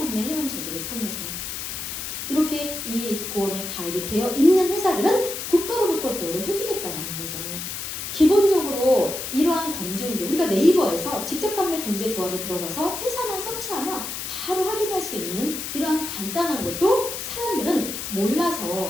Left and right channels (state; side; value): noise; left; hiss, 6 dB below the sound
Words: 회원 제도를 통해서. 이렇게 이 보험에 가입이 되어 있는 회사들은 국가로부터 보호를 해주겠다는 거죠. 기본적으로 이러한 검증도 우리가 네이버에서 직접 판매 공제 조합에 들어가서 회사만 서치하면 바로 확인할 수 있는 이러한 간단한 것도 사람들은